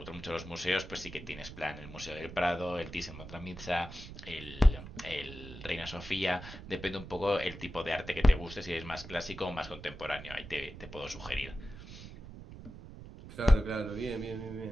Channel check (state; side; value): noise; right; rumble, 14 dB below the sound